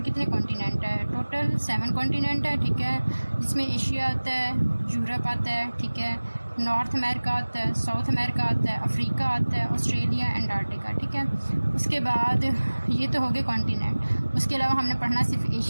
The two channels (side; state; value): both; inverted; correlation -1.00